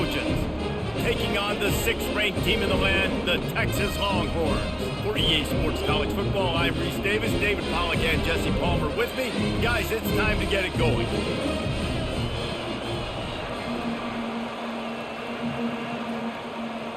taking on the 6th-ranked team in the land, the Texas Longhorns. For EA Sports College Football, I'm Reese Davis, David Pollack, and Jesse Palmer with me. Guys, it's time to get it going.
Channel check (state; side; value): identical; both; correlation 1.00